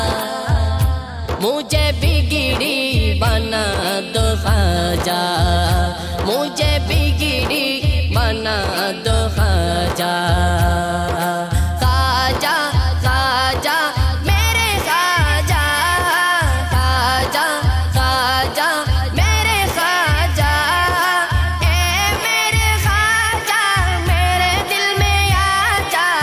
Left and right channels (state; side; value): identical; both; correlation 1.00